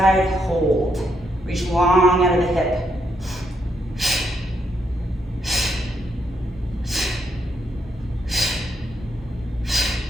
hold. Reach long out of the hip.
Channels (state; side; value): normal; both; correlation 0.77